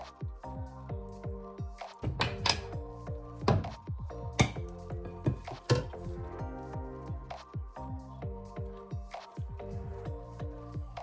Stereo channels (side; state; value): both; identical; correlation 1.00